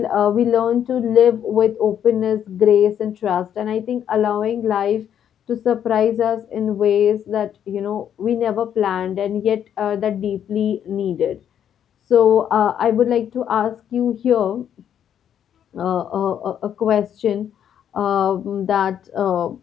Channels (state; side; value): quieter; right; 9.4 dB